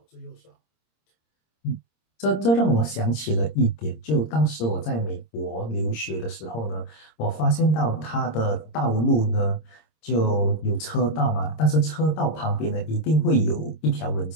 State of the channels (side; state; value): right; late; 26 ms